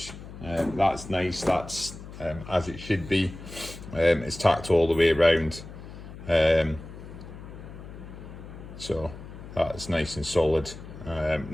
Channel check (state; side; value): noise; left; hum, 13 dB below the sound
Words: That's nice, that's as it should be. It's tacked all the way around. So that's nice and solid.